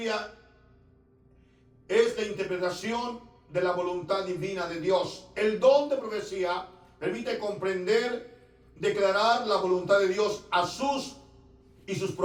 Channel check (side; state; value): both; identical; correlation 1.00